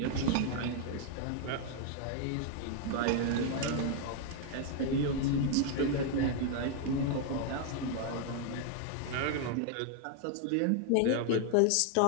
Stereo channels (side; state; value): both; different; correlation 0.00